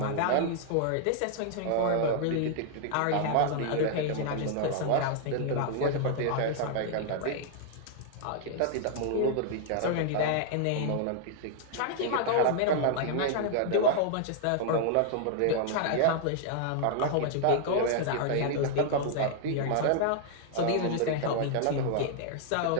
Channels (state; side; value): different; both; correlation 0.00